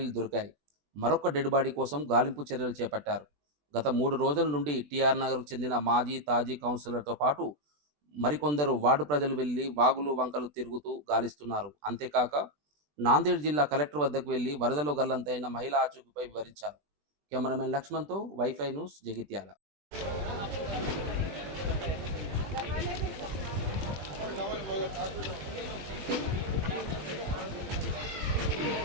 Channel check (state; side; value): late; left; 20 ms